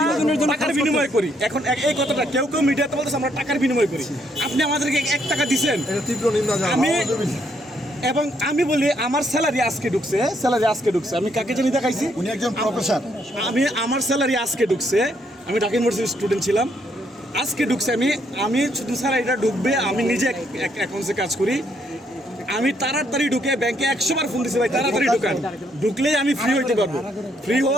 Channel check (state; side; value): normal; both; correlation 0.72